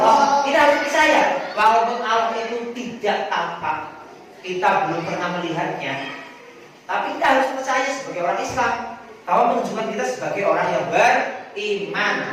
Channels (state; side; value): identical; both; correlation 1.00